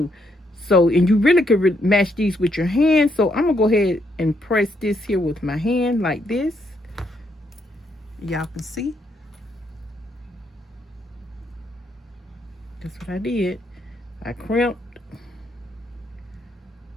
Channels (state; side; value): normal; both; correlation 0.75